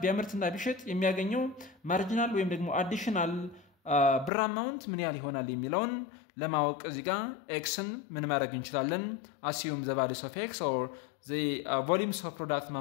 ቢያመርትና ቢሸጥ የሚያገኘው ማርጂናል ወይም ደግሞ አዲሽናል ብር አማውንት ምን ያህል ይሆናል የሚለውን ለማወቅ እዚህ ጋር xን ምን ማድረግ እንችላለን assume the values of x or the volumes of product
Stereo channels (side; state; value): right; drops out; at 4.3 s